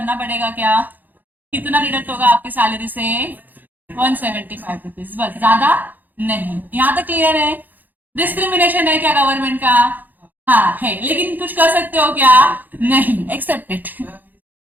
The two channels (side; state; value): left; late; 0.086 ms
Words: पड़ेगा क्या, कितना डिडक्ट होगा आपकी सैलरी से, 175 रुपीज, बस, ज्यादा नहीं। यहां तक क्लियर है। डिस्क्रिमिनेशन है क्या गवर्नमेंट का, हाँ है, लेकिन कुछ कर सकते हो क्या? नहीं, एक्सेप्टेड।